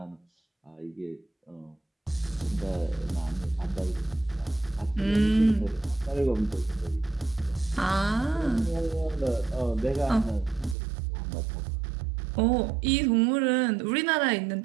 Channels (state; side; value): drops out; left; at 10.8 s